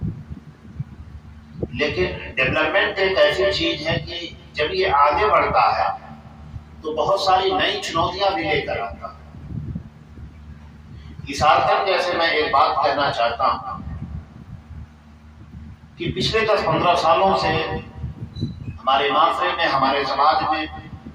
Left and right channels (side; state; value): both; identical; correlation 1.00